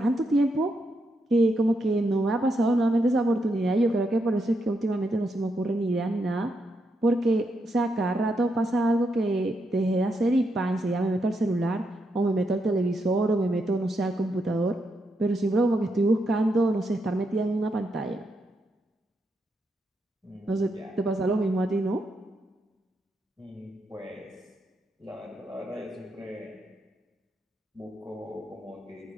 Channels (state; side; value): normal; both; correlation 0.81